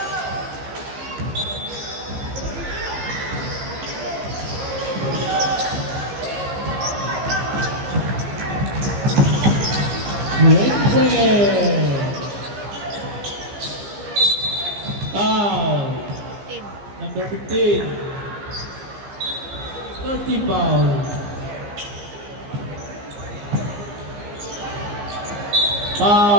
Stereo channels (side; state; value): left; late; 15 ms